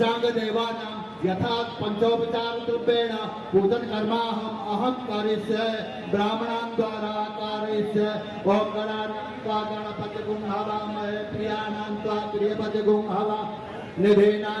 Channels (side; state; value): both; identical; correlation 1.00